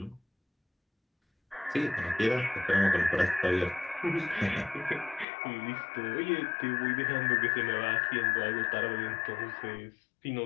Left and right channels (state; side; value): drops out; right; at 5.2 s